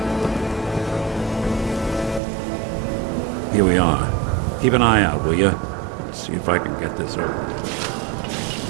Here we are. Keep an eye out, will you? See if I can get this over.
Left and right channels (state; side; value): drops out; left; at 2.2 s